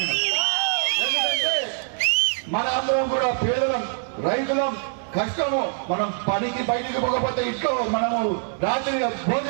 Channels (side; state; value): left; silent; 62 dB below the other